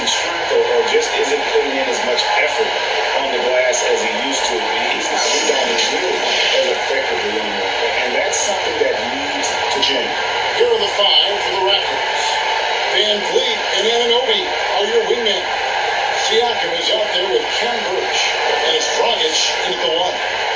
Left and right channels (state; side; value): noise; left; hum, 30 dB below the sound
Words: strength or just isn't putting in as much effort on the glass as he used to, he's not rebounding nearly as effectively anymore. And that's something that needs to change. Here are the 5 for the Raptors. Van Vliet and Anunoby are your wingmen. Siakam is out there with Ken Burch, and it's Dragic in at the 1.